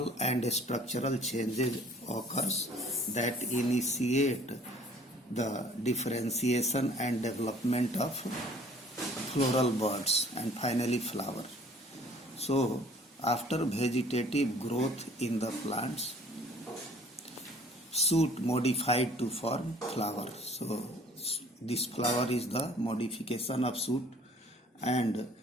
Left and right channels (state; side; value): normal; both; correlation 0.54